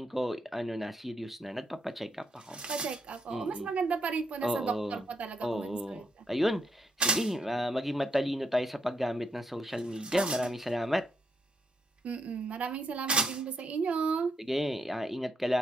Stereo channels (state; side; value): normal; both; correlation 0.78